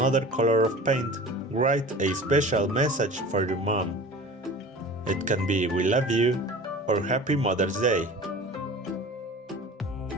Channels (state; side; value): normal; both; correlation 0.39